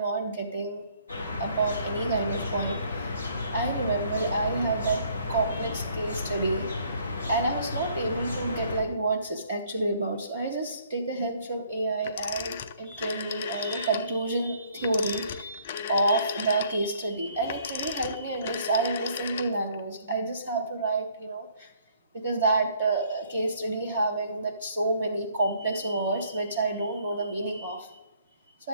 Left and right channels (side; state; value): both; inverted; correlation -0.62